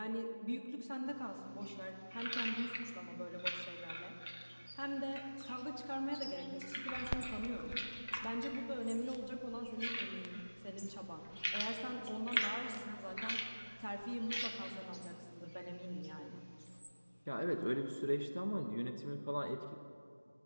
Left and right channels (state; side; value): inverted; both; correlation -1.00